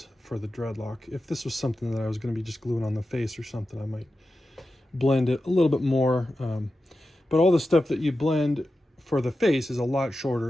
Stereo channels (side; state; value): both; normal; correlation 0.92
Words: for the dreadlock. If this was something that I was going to be just gluing on the face or something, I might blend it a little bit more. But all the stuff that you blend for the face is a lot